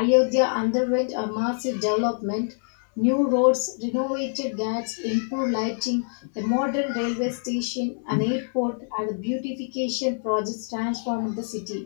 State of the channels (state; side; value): silent; right; 62 dB below the other